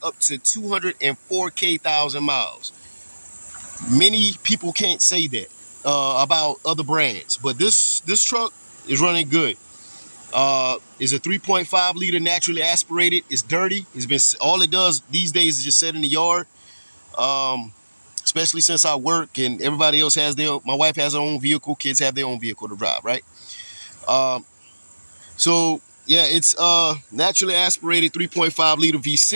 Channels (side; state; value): both; inverted; correlation -1.00